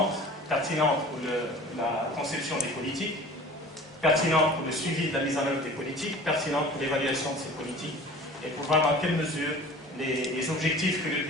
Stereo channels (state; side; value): normal; both; correlation 0.43